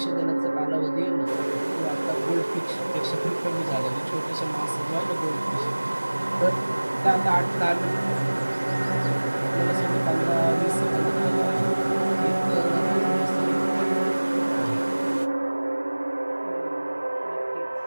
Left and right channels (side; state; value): both; inverted; correlation -1.00